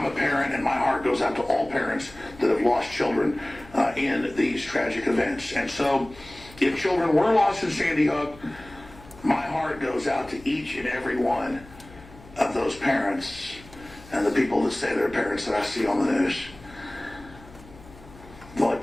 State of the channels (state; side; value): noise; left; hum, 21 dB below the sound